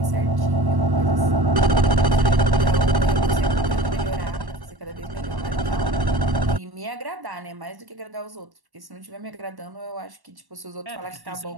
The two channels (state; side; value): late; left; 1.1 ms